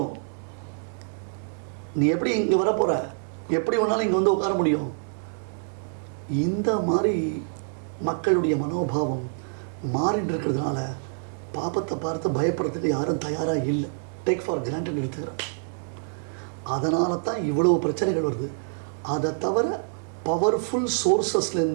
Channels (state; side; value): silent; left; digital silence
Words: நீ எப்படி இங்கே வரப்போகிற, எப்படி வேணாலும் இங்கே வந்து உட்கார முடியும். இந்த மாதிரி மக்களுடைய மனோபாவம் மாறிட்டு இருக்கிறதுனால பாப்பத்தை பார்த்து பயப்படுறதுக்கு யாரும் தயாராக இல்லை. டேக் ஃபார் கிராண்டட் எடுத்துக்கிறேன். அதனால தான் இவ்வளவு பிரச்சனைகள் வருது. அதை தவிர பவர்ஃபுல்